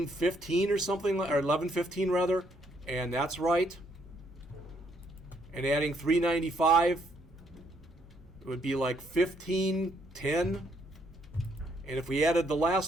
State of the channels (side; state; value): both; normal; correlation 0.71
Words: or something, or $11.15 rather, and that's right. And adding $3.95, it would be like $15.10. And if we added the